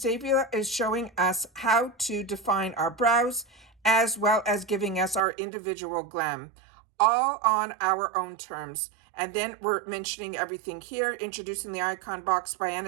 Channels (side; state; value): left; drops out; at 5.2 s